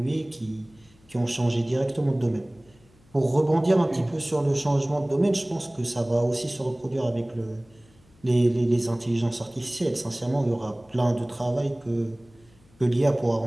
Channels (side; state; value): left; noise; hum, 30 dB below the sound